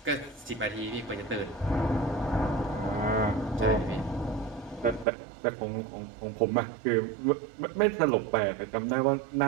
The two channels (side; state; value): left; drops out; at 5.1 s